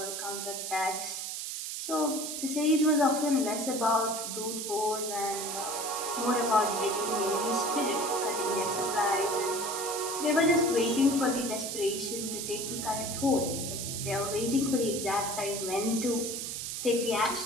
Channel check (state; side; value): noise; right; hiss, 5 dB below the sound